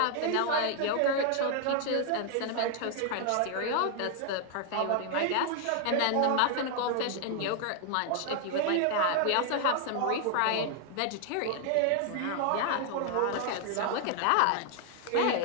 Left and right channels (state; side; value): different; both; correlation 0.00